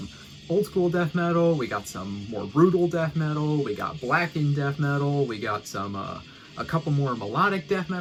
old school death metal, we got some more brutal death metal, we got Blackened death metal, we got some a couple more melodic death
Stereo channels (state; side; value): identical; both; correlation 1.00